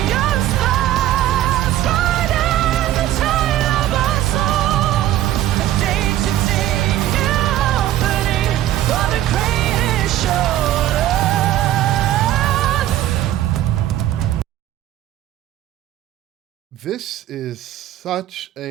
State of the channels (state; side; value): quieter; left; 13.2 dB